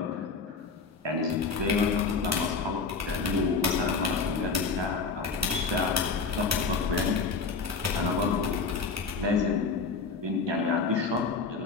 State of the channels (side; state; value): right; quieter; 4.6 dB